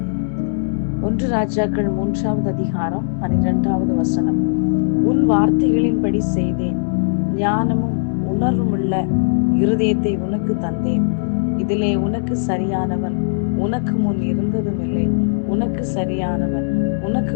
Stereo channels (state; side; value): silent; right; digital silence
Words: 1 ராஜாக்கள் 3வது அதிகாரம் 12வது வசனம். உன் வார்த்தைகளின்படி செய்தேன், ஞானமும் உணர்வுமுள்ள இருதயத்தை உனக்கு தந்தேன். இதிலே உனக்கு சரியானவன் உனக்கு முன் இருந்ததும் இல்லை, உனக்கு சரியானவன் உனக்கு